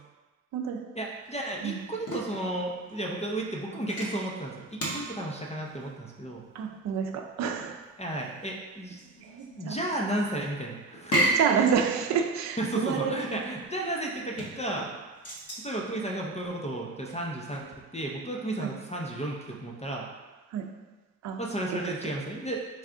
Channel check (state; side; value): quieter; left; 3.0 dB